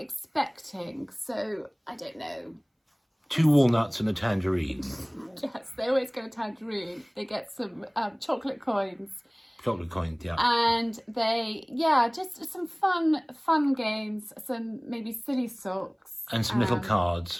expecting, so I don't know. 2 walnuts and a tangerine. Yes, they always get a tangerine. They get some chocolate coins. Chocolate coins, yeah. And they, just some fun games, some maybe silly socks. And some little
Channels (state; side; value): identical; both; correlation 1.00